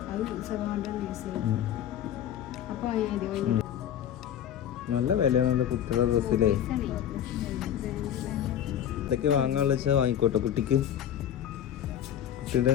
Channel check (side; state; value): right; quieter; 10.1 dB